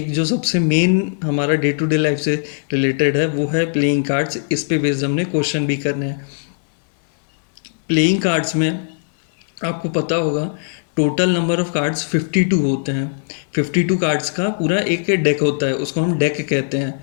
जो सबसे मेन हमारा डे टू डे लाइफ से रिलेटेड है वो है प्लेइंग कार्ड्स। इस पे बेस्ड हमने क्वेश्चन भी करने हैं। प्लेइंग कार्ड्स में आपको पता होगा टोटल नंबर ऑफ कार्ड्स 52 होते हैं। 52 कार्ड्स का पूरा एक डेक होता है, उसको हम डेक कहते हैं,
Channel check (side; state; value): right; silent; digital silence